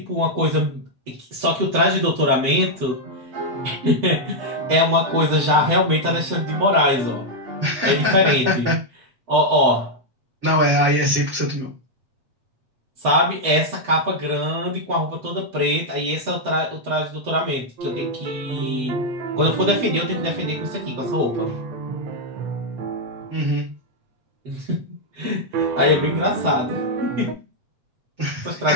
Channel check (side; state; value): left; late; 7.9 ms